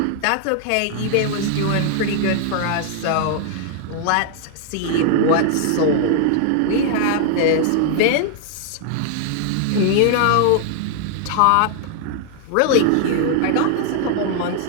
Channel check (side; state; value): both; different; correlation -0.01